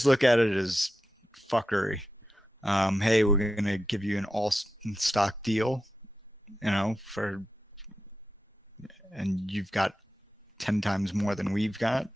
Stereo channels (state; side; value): normal; both; correlation 0.90